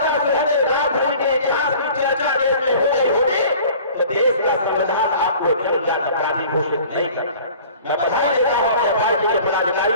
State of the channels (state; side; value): inverted; both; correlation -0.47